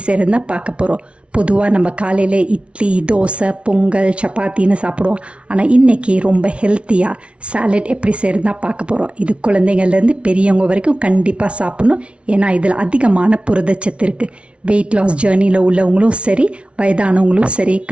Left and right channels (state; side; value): late; left; 0.060 ms